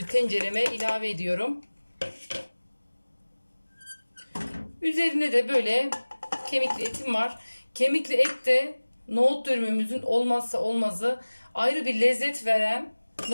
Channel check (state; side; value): inverted; both; correlation -1.00